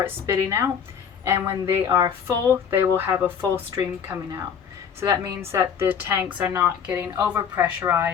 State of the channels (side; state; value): right; quieter; 7.4 dB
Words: spitting out, and when they are full, they will have a full stream coming out. So that means that the tanks are not getting over